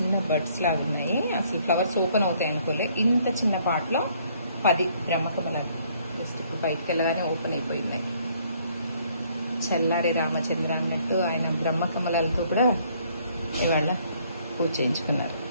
బడ్స్ లాగా ఉన్నాయి. అసలు ఫ్లవర్స్ ఓపెన్ అవుతాయి అనుకోలే. ఇంత చిన్న పాట్లో 10 బ్రహ్మ కమలాలు. జస్ట్ ఇప్పుడు బయటకు వెళ్ళగానే ఓపెన్ అయిపోయింది. చల్లారి రామచంద్ర అన్నట్టు ఆయన బ్రహ్మ కమలాలతో కూడా ఇవాళ పూజ చేయించుకున్నారు.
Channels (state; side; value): inverted; both; correlation -0.64